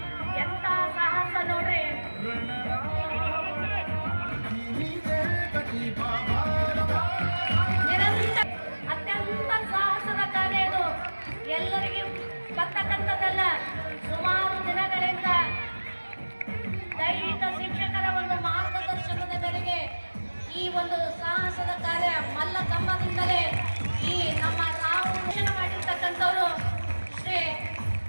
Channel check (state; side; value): inverted; both; correlation -1.00